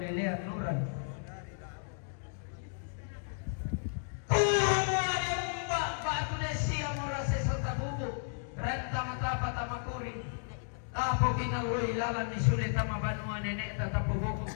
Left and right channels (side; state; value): right; silent; digital silence